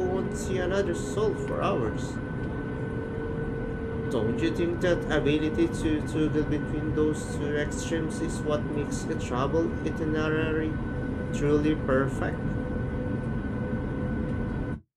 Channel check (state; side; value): identical; both; correlation 1.00